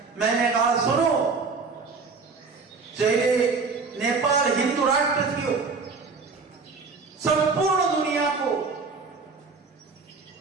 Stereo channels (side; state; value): left; quieter; 4.6 dB